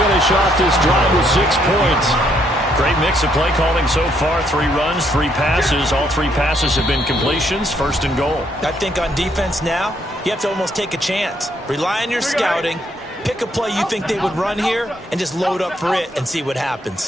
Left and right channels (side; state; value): both; normal; correlation 0.72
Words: off this drive with 6 points. Great mix of play calling so far. 3 runs, 3 passes. All 3 passes have been completions. 1st and goal. I think on defense now, you have to almost take a chance. Rely on your scouting. Pick a play you think they would run here and just load up for it and see what